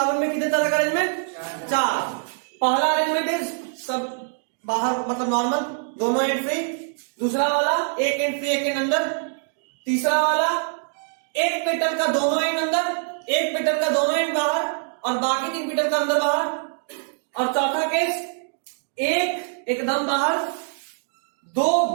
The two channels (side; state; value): left; silent; digital silence